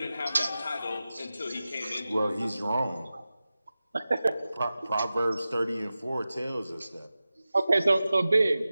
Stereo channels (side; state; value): both; inverted; correlation -0.95